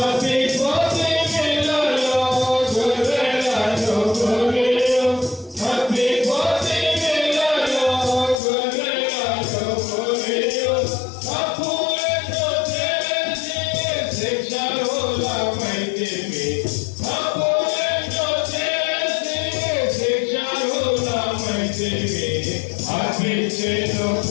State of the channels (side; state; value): right; drops out; at 8.4 s